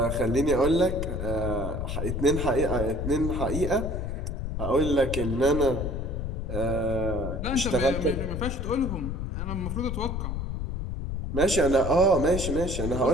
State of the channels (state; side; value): noise; left; rumble, 3 dB below the sound